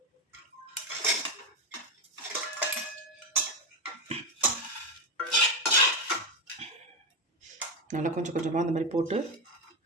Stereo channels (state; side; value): normal; both; correlation 0.10